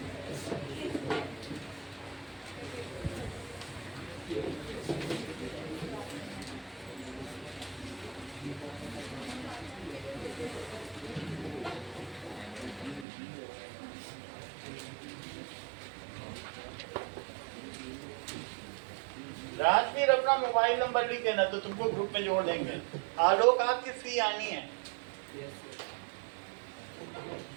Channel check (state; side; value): drops out; left; at 13.1 s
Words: राजवीर अपना मोबाइल नंबर लिख देना तो तुमको ग्रुप में जोड़ देंगे। आलोक आपकी फ्री आनी है।